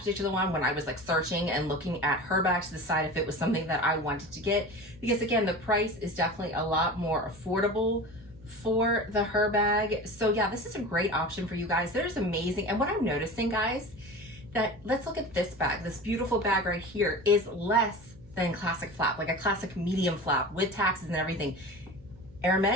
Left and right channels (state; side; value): noise; right; hum, 24 dB below the sound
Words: one when I was like searching and looking at Herbag to decide if it was something that I wanted to get. Because again, the price is definitely a lot more affordable for the Herbag. So yeah, this is a great option for you guys. There's amazing. And what I'm noticing, guys, that let's look at this bag. This beautiful bag right here is less than classic flap, like a classic medium flap with taxes and everything.